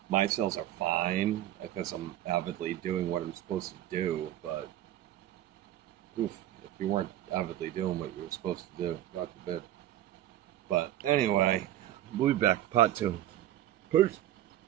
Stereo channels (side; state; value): left; quieter; 12.9 dB